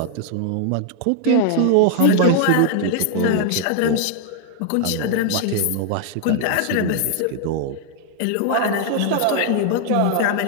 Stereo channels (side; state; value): both; different; correlation 0.00